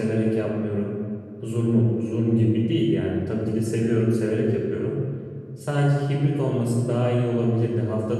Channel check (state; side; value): identical; both; correlation 1.00